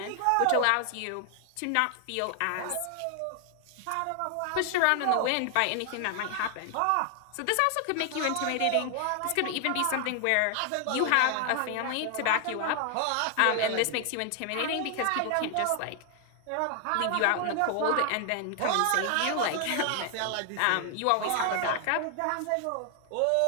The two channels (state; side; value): different; both; correlation 0.00